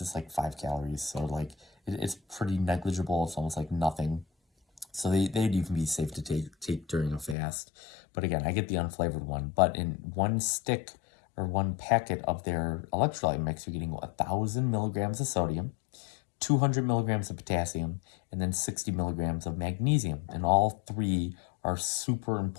it's like 5 calories. So like it's pretty negligible. It's almost like nothing. So they'd even be safe to take during a fast. But again, I get the unflavored one. But in one stick or one packet of their electrolyte mix, you're getting 1,000 milligrams of sodium, 200 milligrams of potassium, and then 60 milligrams of magnesium. And all 3 are super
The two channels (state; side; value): drops out; right; at 7.4 s